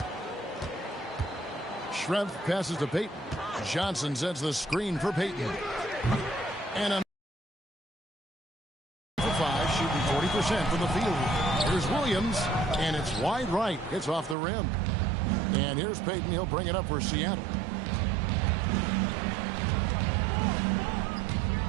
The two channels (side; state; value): left; drops out; at 14.4 s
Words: Shrimp passes to Payton. Johnson sends the screen for Payton. And a for 5, shooting 40% from the field. Here's Williams, and it's wide right. It's off the rim. And here's Payton. He'll bring it up for Seattle.